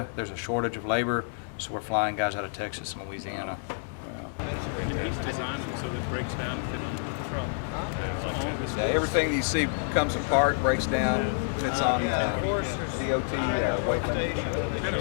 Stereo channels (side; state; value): right; silent; digital silence